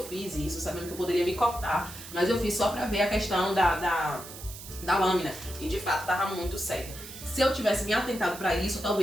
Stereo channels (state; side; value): noise; right; hiss, 13 dB below the sound